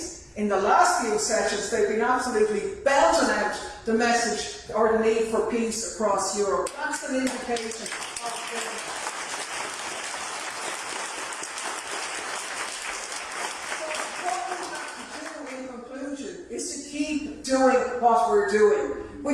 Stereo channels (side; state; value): both; identical; correlation 1.00